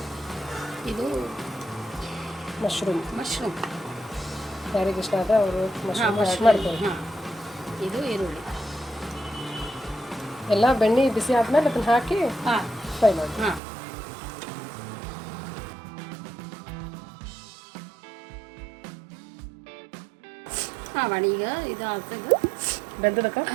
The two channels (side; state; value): left; drops out; at 13.6 s